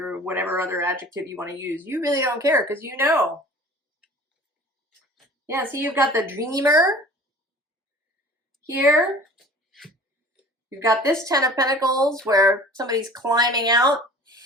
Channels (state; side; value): normal; both; correlation 0.44